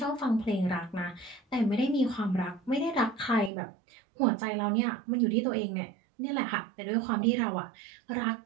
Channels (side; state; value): left; drops out; at 3.5 s